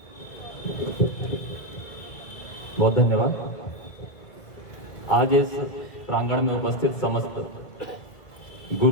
बहुत धन्यवाद। आज इस प्रांगण में उपस्थित समस्त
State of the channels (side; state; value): right; late; 1.8 ms